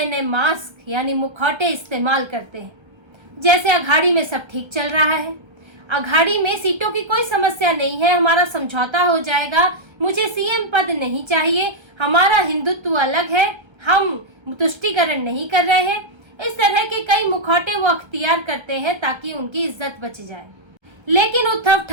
नए मास्क यानी मुखौटे इस्तेमाल करते हैं। जैसे अघाड़ी में सब ठीक चल रहा है, अघाड़ी में सीटों की कोई समस्या नहीं है, हमारा समझौता हो जाएगा, मुझे सीएम पद नहीं चाहिए, हमारा हिंदुत्व अलग है, हम तुष्टीकरण नहीं कर रहे हैं। इस तरह के कई मुखौटे वो अख्तियार करते हैं ताकि उनकी इज्जत बच जाए। लेकिन उद्धव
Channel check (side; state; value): left; late; 1.3 ms